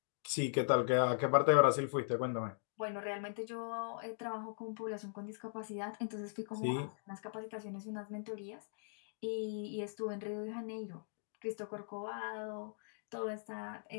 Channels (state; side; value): silent; right; digital silence